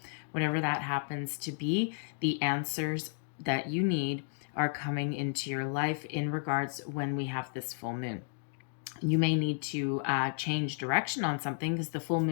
Whatever that happens to be, the answers that you need are coming into your life in regards when we have this full moon. You may need to change direction on something, because the full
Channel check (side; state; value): right; silent; 56 dB below the other